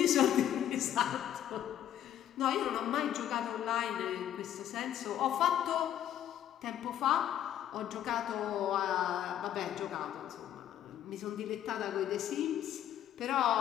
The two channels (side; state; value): right; quieter; 11.1 dB